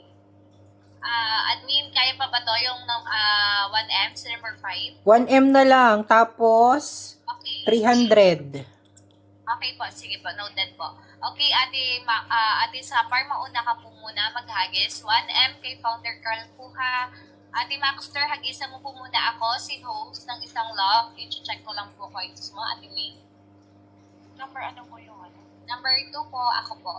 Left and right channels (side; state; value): both; identical; correlation 1.00